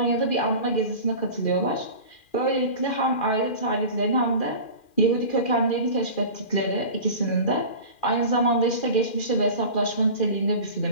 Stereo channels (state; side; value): late; right; 2.4 ms